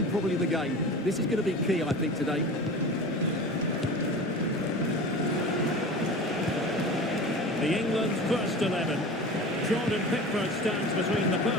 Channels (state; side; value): normal; both; correlation 0.35